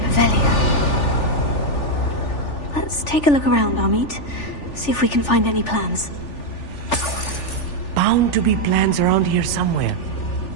Velia. Let's take a look around, Amit. See if we can find any plans. Bound to be plans around here somewhere.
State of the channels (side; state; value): right; late; 3.4 ms